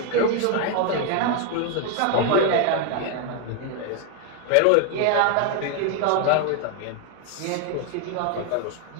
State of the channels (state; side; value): different; both; correlation 0.01